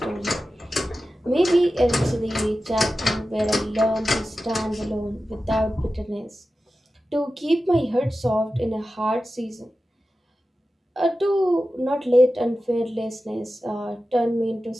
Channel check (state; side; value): normal; both; correlation 0.93